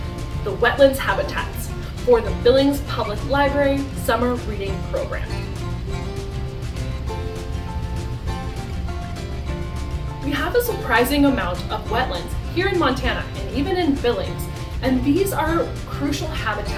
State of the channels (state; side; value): identical; both; correlation 1.00